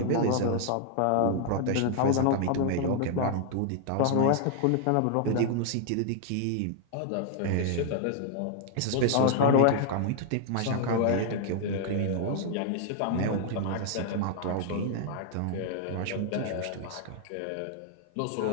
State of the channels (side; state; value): both; different; correlation 0.00